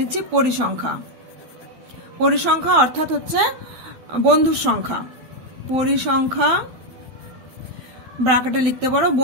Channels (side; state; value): left; late; 12 ms